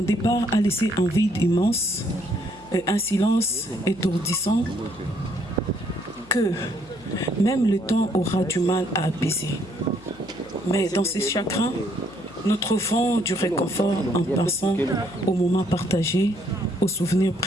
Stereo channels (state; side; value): noise; left; hum, 23 dB below the sound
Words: départ a laissé un vide immense et un silence étourdissant que même le temps aura du mal à apaiser. Mais dans ces chagrins, nous trouvons du réconfort en pensant aux moments partagés, aux souvenirs